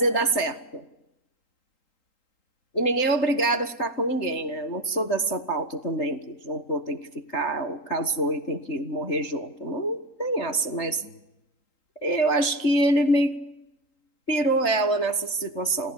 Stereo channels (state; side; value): late; right; 3.8 ms